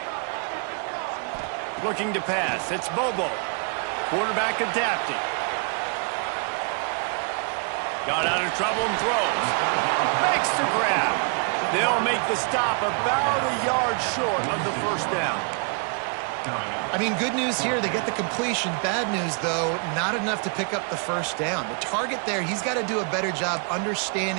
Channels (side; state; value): left; quieter; 39.8 dB